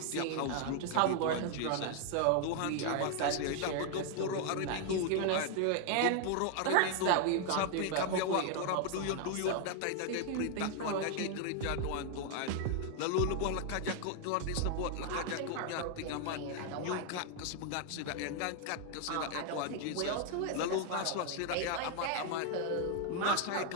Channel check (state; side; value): different; both; correlation 0.00